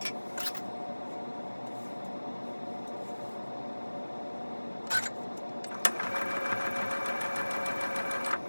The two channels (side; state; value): both; inverted; correlation -1.00